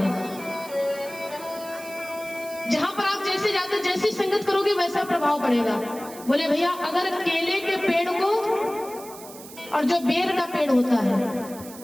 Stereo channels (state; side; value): noise; right; hiss, 16 dB below the sound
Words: जहां पर आप जैसे जाते, जैसी संगत करोगे वैसा प्रभाव पड़ेगा। बोले भैया अगर केले के पेड़ को और जो बेर का पेड़ होता है,